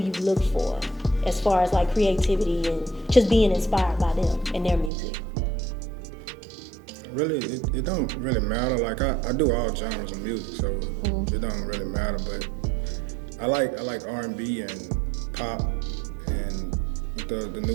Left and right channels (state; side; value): drops out; left; at 4.9 s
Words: look for as far as like creativity and just being inspired by them and their music? Really, it don't really matter. Like I do all genres of music, so it don't really matter. But I like R&B and pop and with the new